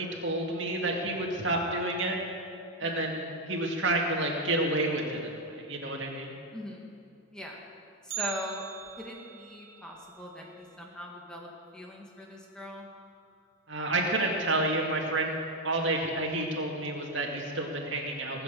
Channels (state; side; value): normal; both; correlation 0.05